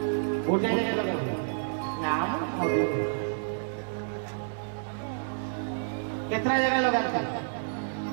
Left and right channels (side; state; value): left; silent; digital silence